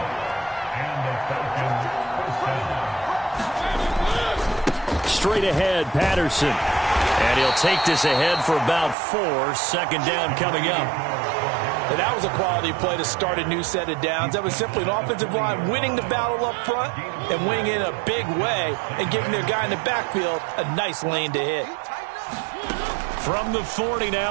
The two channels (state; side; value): drops out; left; at 9.0 s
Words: Straight ahead, Patterson. And he'll take this ahead for about 4. 2nd down coming up. And that was a quality play to start a new set of downs. That was simply an offensive line winning the battle up front and winning in a big way and giving their guy in the backfield a nice lane to hit. From the 40